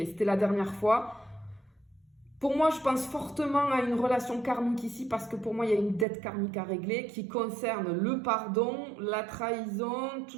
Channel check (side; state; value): left; drops out; at 6.1 s